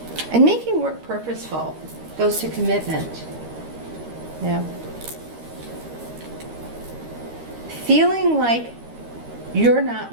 And making work purposeful goes to commitment. Feeling like you're not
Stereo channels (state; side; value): late; left; 13 ms